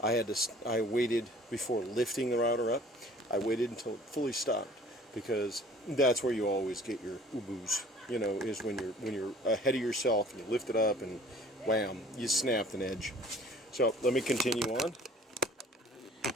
I waited before lifting the router up. I waited until it fully stopped, because that's where you always get your uboos. You know, is when you're ahead of yourself and you lift it up and wham, you snapped an edge. So let me continue on.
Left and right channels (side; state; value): both; normal; correlation 0.51